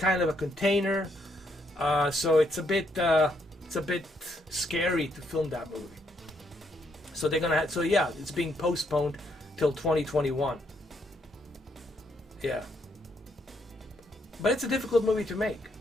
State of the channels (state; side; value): normal; both; correlation 0.74